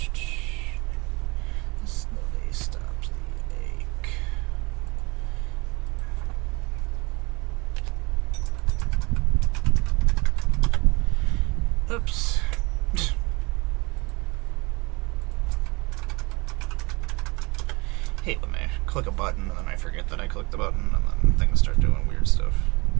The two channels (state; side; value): quieter; left; 26.3 dB